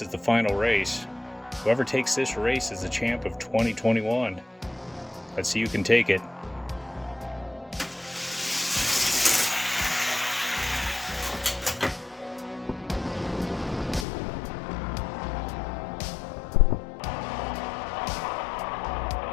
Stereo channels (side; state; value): right; drops out; at 14.1 s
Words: is the final race. Whoever takes this race is the champ of 2021. Let's see who can take it.